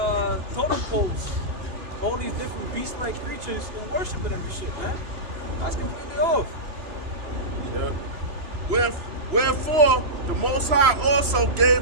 totem poles, all these different beast-like creatures, and worshiping every shit, man. That's completely off. Yeah. Wherefore, the Most High also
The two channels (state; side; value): late; left; 3.0 ms